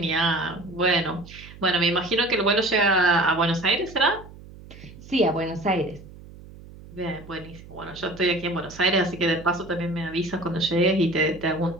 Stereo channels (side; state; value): right; noise; hum, 18 dB below the sound